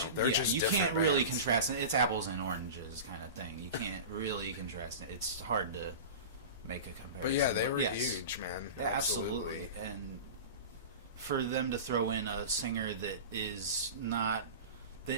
just you can't really contrast it. It's apples and oranges kind of thing. You can't really contrast it. It's hard to make a comparison. But yeah, they were huge, man. Yeah, absolutely. And for them to throw in a singer that is known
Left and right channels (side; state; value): both; inverted; correlation -0.31